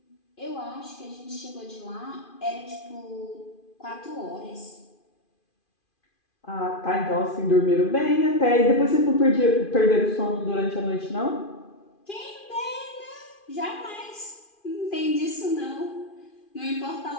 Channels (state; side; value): late; right; 2.4 ms